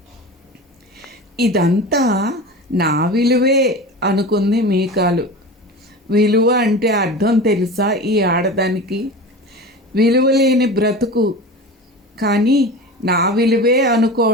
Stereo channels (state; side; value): normal; both; correlation 0.31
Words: ఇదంతా నా విలువే అనుకుంది మీకాలు. విలువ అంటే అర్థం తెలుసా ఈ ఆడదానికి? విలువలేని బ్రతుకు. కానీ నా విలువే